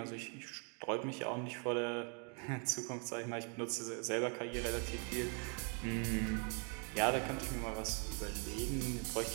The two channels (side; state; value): left; quieter; 39.0 dB